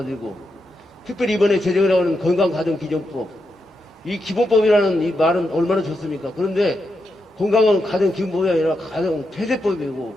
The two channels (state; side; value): normal; both; correlation 0.85